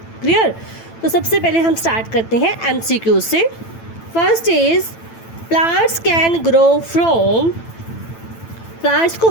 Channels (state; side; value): late; right; 9.0 ms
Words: क्लियर? तो सबसे पहले हम स्टार्ट करते हैं एमसीक्यू से। First is plants can grow from. Plants को